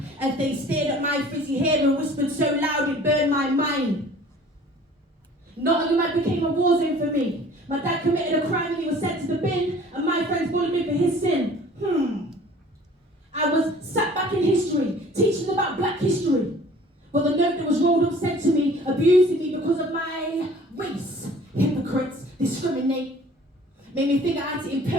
As they stared at my frizzy hair and whispered so loud it burned my mind. Nottingham became a war zone for me. My dad committed a crime and he was sent to the bin, and my friends bullied me for his sin. I was sat back in history, teaching about black history. But the note that was rolled up said to me, abusing me because of my race. Hypocrites discriminate. Made me think I had to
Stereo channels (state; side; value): normal; both; correlation 0.50